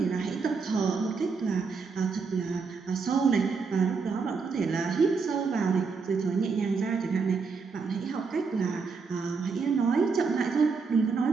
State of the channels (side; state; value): left; quieter; 4.9 dB